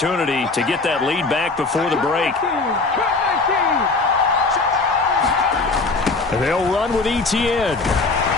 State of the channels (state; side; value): quieter; right; 3.7 dB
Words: to get that lead back before the break. They'll run with Etienne.